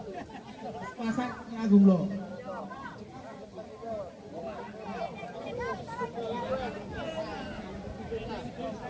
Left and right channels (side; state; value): both; identical; correlation 1.00